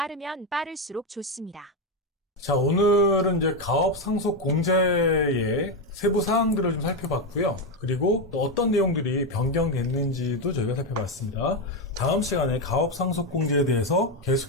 빠를수록 좋습니다. 자, 오늘은 이제 가업 상속 공제의 세부 사항들을 좀 살펴봤고요. 그리고 또 어떤 내용들이 변경됐는지도 저희가 살펴봤습니다. 다음 시간에 가업 상속 공제에 대해서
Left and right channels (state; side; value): normal; both; correlation 0.08